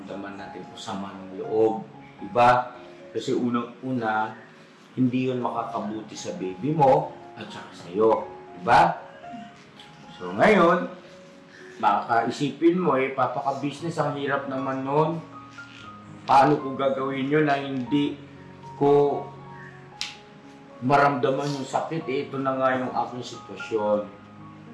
natin o sama ng loob. Diba? Kasi unang-una, hindi yun makakabuti sa baby mo at saka sa'yo. Diba? So ngayon, makakaisipin mo papaka-business, ang hirap naman nun. Paano ko gagawin yun na hindi ko maramdaman yung sakit? Ito na nga yung aking sitwasyon.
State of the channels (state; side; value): identical; both; correlation 1.00